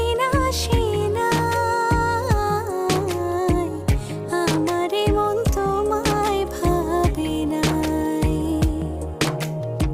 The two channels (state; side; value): identical; both; correlation 1.00